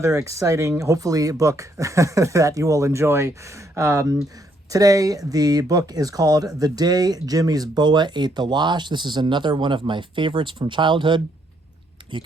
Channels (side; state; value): both; normal; correlation 0.72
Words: exciting, hopefully, book that you will enjoy. Today, the book is called The Day Jimmy's Boa Ate the Wash. This is another one of my favorites from childhood. You